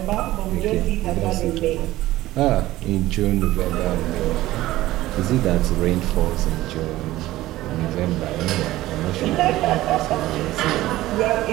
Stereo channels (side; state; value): left; quieter; 16.4 dB